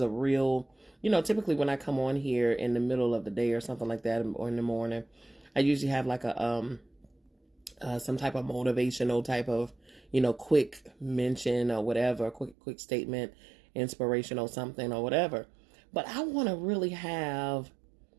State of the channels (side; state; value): left; drops out; at 12.6 s